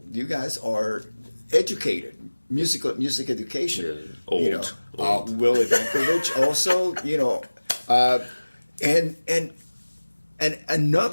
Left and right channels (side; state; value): both; inverted; correlation -1.00